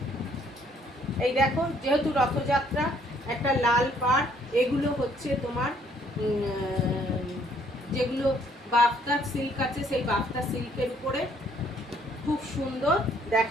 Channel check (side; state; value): both; normal; correlation 0.65